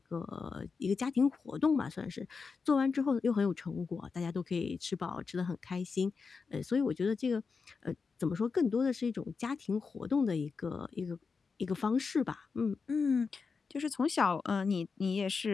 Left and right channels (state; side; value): quieter; right; 5.0 dB